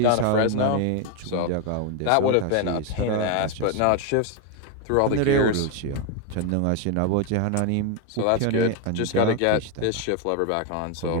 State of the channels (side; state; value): both; different; correlation 0.01